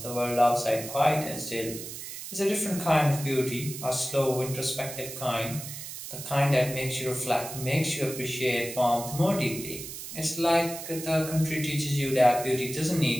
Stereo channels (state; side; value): noise; right; hiss, 10 dB below the sound